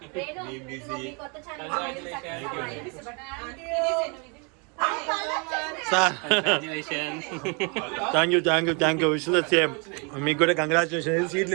Thank you wish the same. మీకు కూడా కంగ్రాచులేషన్. సీట్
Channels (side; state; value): left; quieter; 33.5 dB